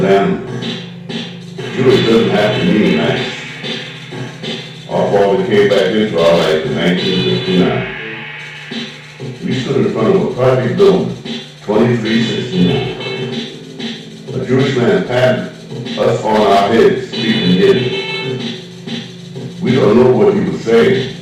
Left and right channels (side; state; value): both; identical; correlation 1.00